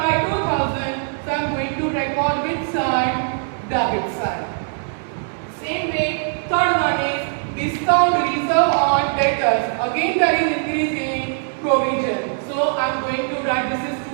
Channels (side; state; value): left; silent; digital silence